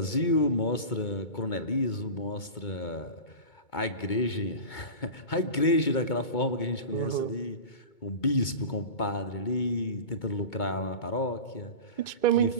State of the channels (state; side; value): late; right; 2.2 ms